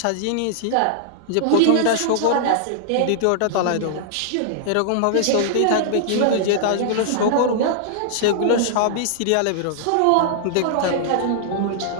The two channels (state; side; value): different; both; correlation -0.01